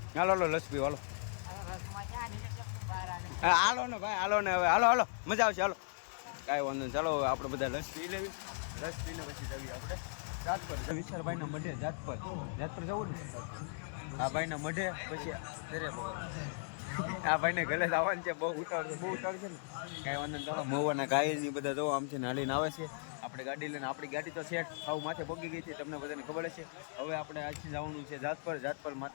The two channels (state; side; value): silent; right; digital silence